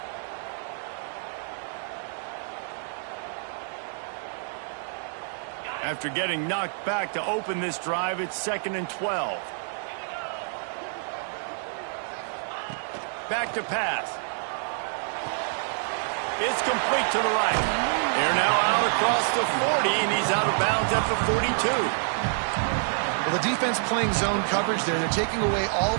After getting knocked back to open this drive, it's 2nd and 12. Back to pass. It's complete to the right. They're now out across the 40, and he's out of bounds at the 42. Well, the defense playing zone coverage there. They're taking away all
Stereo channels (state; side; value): silent; left; 60 dB below the other